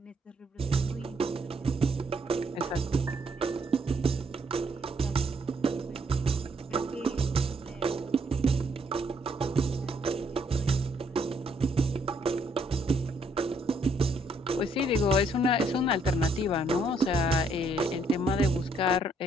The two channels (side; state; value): both; normal; correlation 0.70